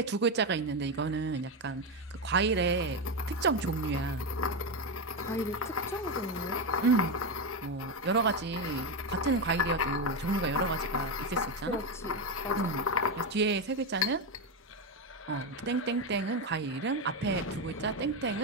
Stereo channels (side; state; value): both; normal; correlation 0.11